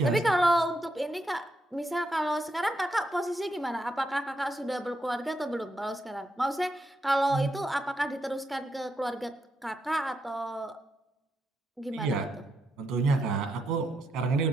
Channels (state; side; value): normal; both; correlation 0.81